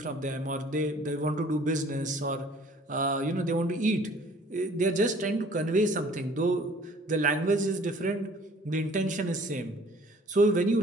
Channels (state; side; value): normal; both; correlation 0.54